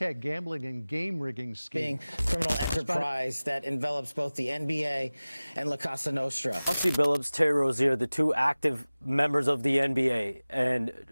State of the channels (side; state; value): both; inverted; correlation -0.99